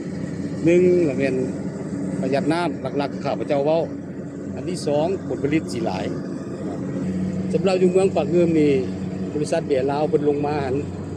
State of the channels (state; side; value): identical; both; correlation 1.00